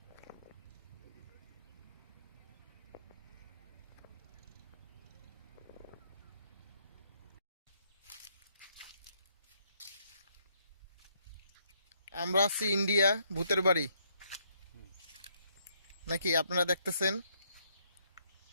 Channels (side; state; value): both; inverted; correlation -0.72